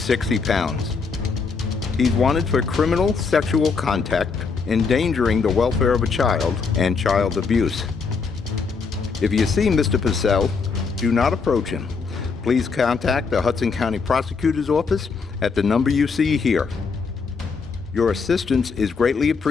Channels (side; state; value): right; quieter; 5.0 dB